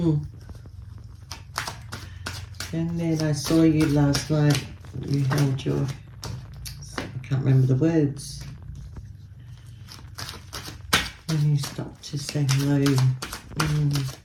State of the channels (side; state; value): both; identical; correlation 1.00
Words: then I saw you last night. You held your, I can't remember the words. When you stopped to say hello.